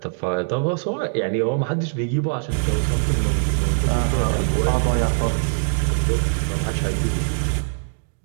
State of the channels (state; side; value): silent; left; digital silence